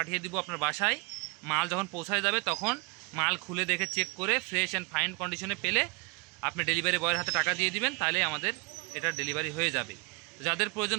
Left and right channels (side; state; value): left; quieter; 31.3 dB